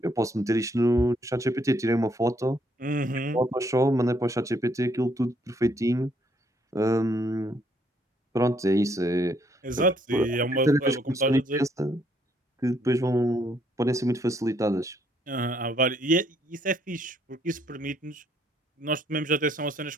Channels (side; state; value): both; normal; correlation 0.69